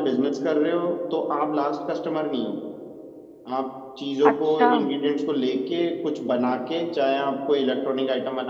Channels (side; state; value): both; identical; correlation 1.00